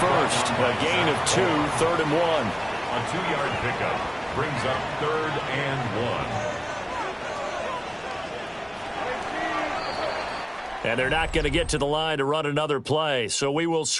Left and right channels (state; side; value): identical; both; correlation 1.00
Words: first. A gain of 2, 3rd and 1. A 2-yard pickup brings up 3rd and 1. And they're not going to get to the line to run another play. So we will